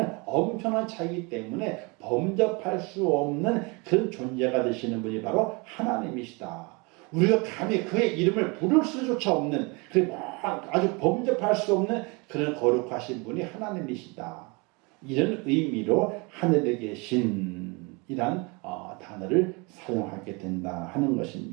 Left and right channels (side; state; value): left; quieter; 28.8 dB